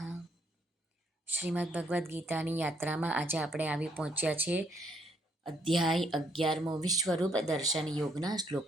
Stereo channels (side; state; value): both; normal; correlation 0.70